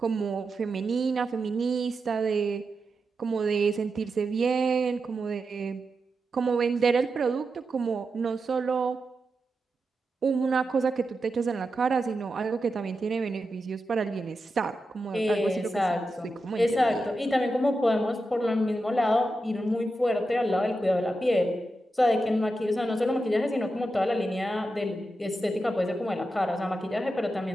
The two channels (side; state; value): both; normal; correlation 0.89